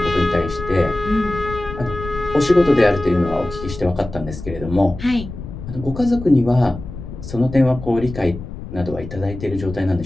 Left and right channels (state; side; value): noise; left; rumble, 11 dB below the sound